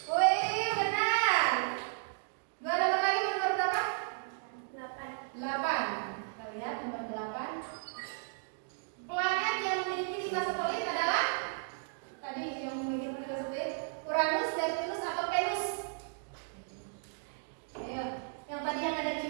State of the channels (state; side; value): silent; left; digital silence